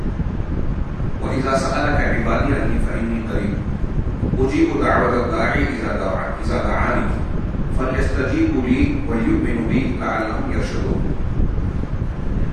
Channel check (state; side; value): identical; both; correlation 1.00